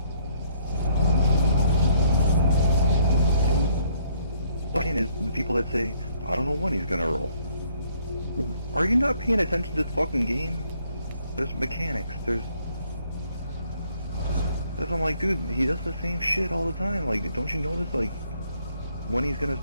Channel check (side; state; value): both; inverted; correlation -0.66